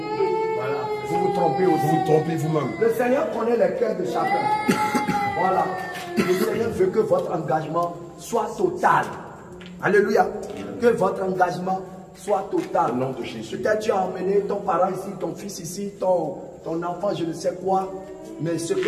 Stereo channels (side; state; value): both; identical; correlation 1.00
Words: Voilà. Vous vous trompez aussi. Vous vous trompez vous-même. Le Seigneur connaît les cœurs de chacun. Voilà. Le Seigneur veut que votre engagement soit total. Alléluia. Que votre engagement soit total. Au nom de Jésus. Peut-être tu as emmené ton parent ici, ton fils ici, ton enfant, je ne sais quoi. Mais ce